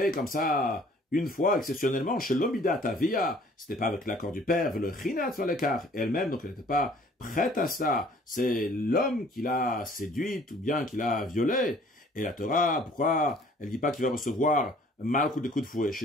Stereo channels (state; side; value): normal; both; correlation 0.55